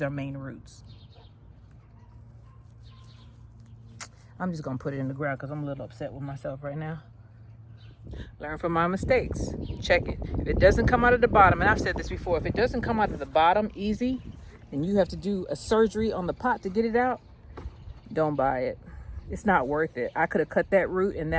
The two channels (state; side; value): identical; both; correlation 1.00